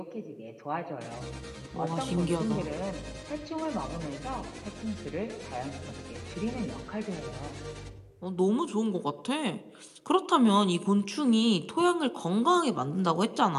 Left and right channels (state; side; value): identical; both; correlation 1.00